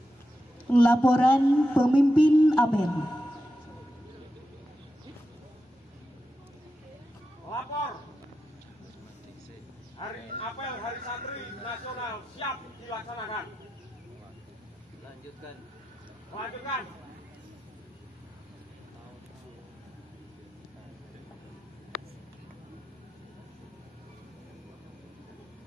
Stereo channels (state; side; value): normal; both; correlation 0.89